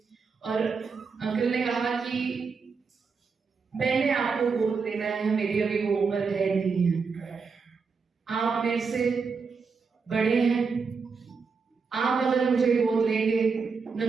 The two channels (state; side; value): quieter; left; 5.1 dB